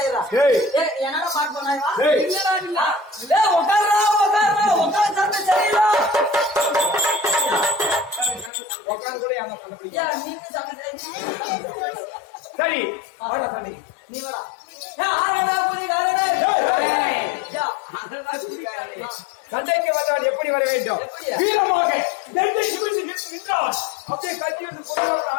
என்னடா பாட்டு பண்ணா சரி நீ வரா சண்டைக்கு வந்தால் எப்படி வர வேண்டும்? வீரமாக நெஞ்சை நிமிர்ந்து நின்றான். அப்படியே கட்சி வந்து பொருளாதார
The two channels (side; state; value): right; drops out; at 8.5 s